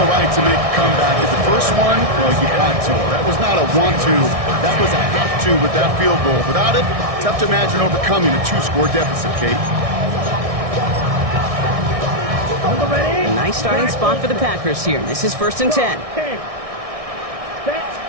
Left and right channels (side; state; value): left; late; 1.6 ms